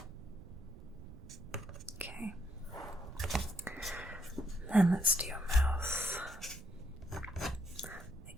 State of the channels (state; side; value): noise; right; rumble, 15 dB below the sound